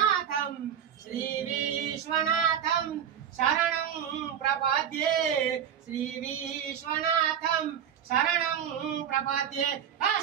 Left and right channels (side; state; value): left; quieter; 8.9 dB